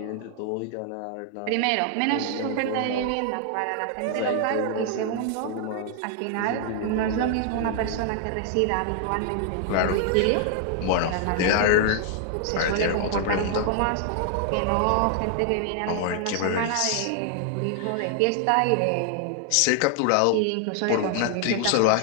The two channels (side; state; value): both; different; correlation 0.00